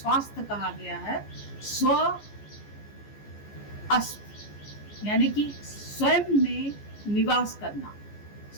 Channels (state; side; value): late; right; 14 ms